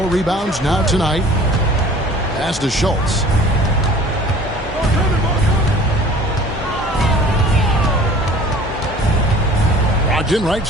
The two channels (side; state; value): both; normal; correlation 0.47